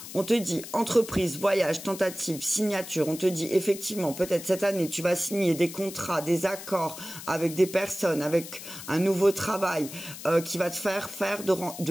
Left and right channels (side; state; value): left; noise; hiss, 12 dB below the sound